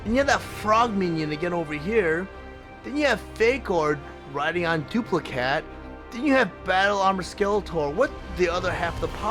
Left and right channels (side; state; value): both; identical; correlation 1.00